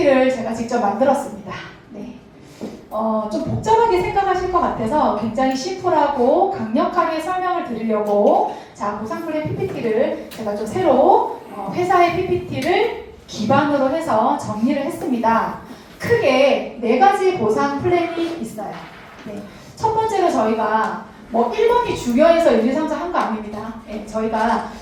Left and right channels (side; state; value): both; identical; correlation 1.00